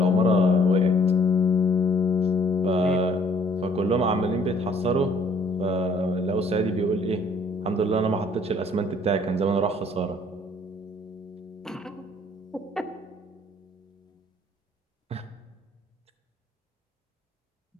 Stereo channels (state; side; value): normal; both; correlation 0.60